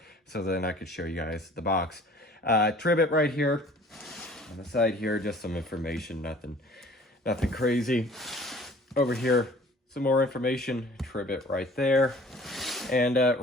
so then I could show you guys the box. Tribit right here on the side here, just some information, nothing crazy. Over here, some more information, Tribit right there. And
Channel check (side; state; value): both; normal; correlation 0.50